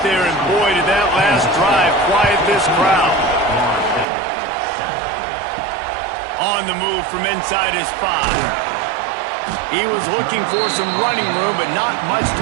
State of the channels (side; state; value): left; drops out; at 4.0 s